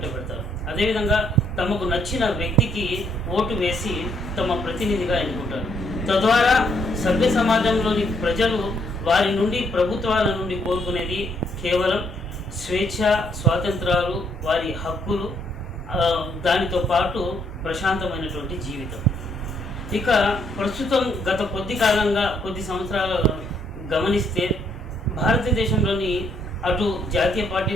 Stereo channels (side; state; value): both; normal; correlation 0.71